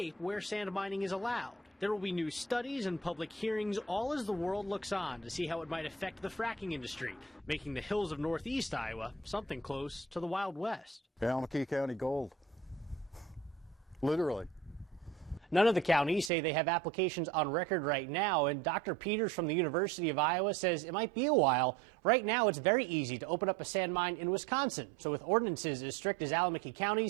where sand mining is allowed. There will be new studies and public hearings, all as the world looks on to see how it might affect the fracking industry, making the hills of northeast Iowa something close to the Wild West. ALLAMAKEE County gold. Literally. None of the counties say they have applications on record right now, and Dr. Peters from the University of Iowa says it might be a while. Right now, it's very easy to open up a sand mine in Wisconsin, so with ordinances as strict as ALLAMAKEE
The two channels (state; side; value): drops out; left; at 16.3 s